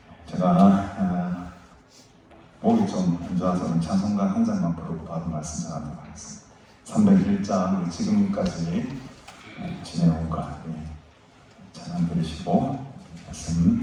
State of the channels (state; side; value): identical; both; correlation 1.00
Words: 제가 목이 좀 안 좋아서 찬송가 한 장만 부르고 바로 말씀 전하도록 하겠습니다. 301장 지금까지 지내온 것 찬양 들으시고